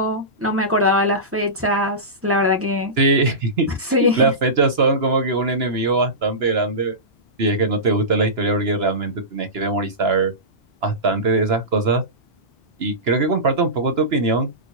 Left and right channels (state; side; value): normal; both; correlation -0.19